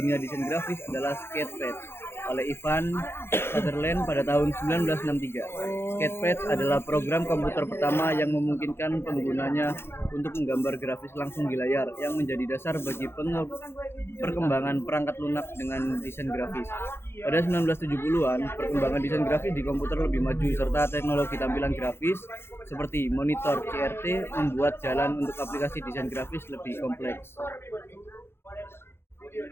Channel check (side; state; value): right; late; 0.12 ms